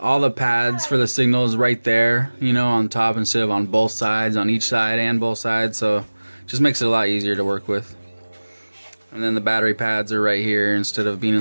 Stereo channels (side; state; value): both; inverted; correlation -1.00